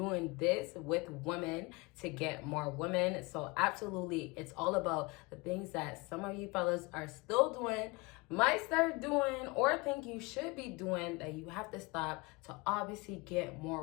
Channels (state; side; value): quieter; right; 25.9 dB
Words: this with women to get more women. So absolutely, it's all about the things that some of you fellas are still doing, might start doing, or think you should be doing that you have to stop to obviously get